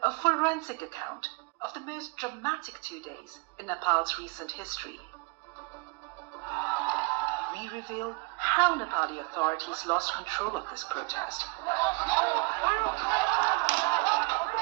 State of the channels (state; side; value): quieter; left; 29.9 dB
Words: a forensic account of the most dramatic 2 days in Nepal's recent history. We reveal how Nepali authorities lost control of this protest,